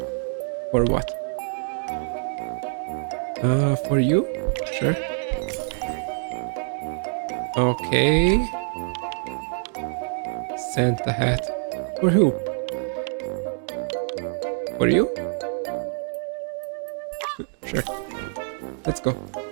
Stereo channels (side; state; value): left; silent; 61 dB below the other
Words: For what? For you? Sure. Okay. Santa hat. For who? For you? Sure. Let's go.